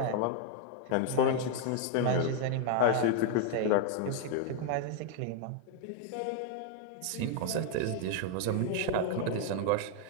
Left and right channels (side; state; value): both; different; correlation 0.00